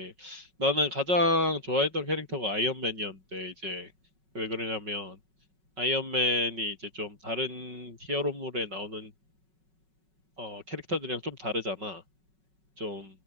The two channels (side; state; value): left; late; 5.4 ms